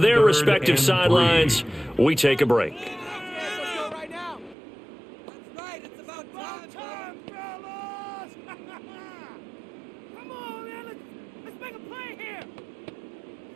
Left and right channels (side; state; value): left; drops out; at 4.5 s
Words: their respective sidelines, we take a break.